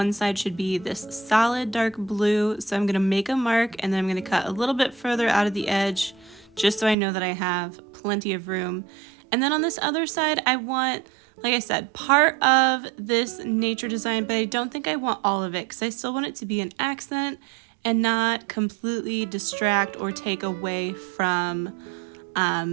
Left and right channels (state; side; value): drops out; left; at 7.0 s